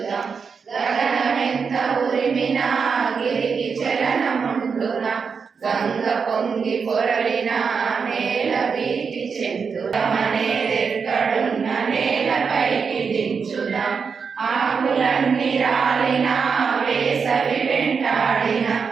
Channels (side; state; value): left; quieter; 5.7 dB